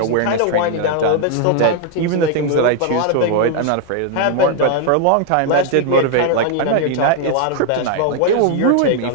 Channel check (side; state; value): both; different; correlation 0.00